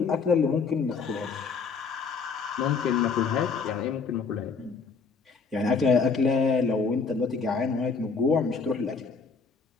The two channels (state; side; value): quieter; right; 5.0 dB